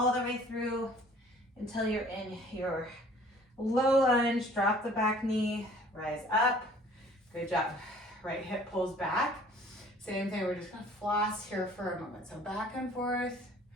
the way through until you're in your low lunge. Drop the back knee, rise up. Good job. Right hip pulls back. Same thing, we're just gonna floss here for a moment. So back and forth.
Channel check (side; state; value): both; normal; correlation 0.53